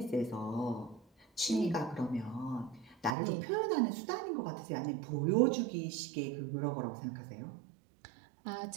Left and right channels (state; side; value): drops out; left; at 3.2 s